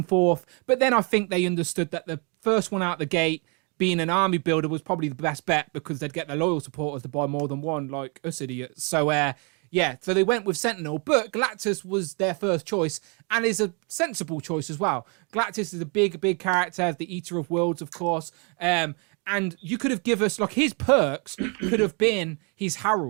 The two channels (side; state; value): left; quieter; 34.8 dB